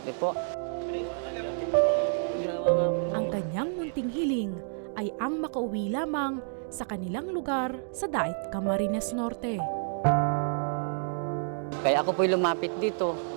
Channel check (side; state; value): left; silent; digital silence